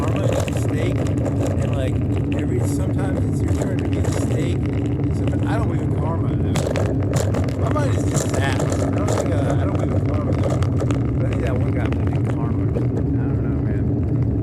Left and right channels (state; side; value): identical; both; correlation 1.00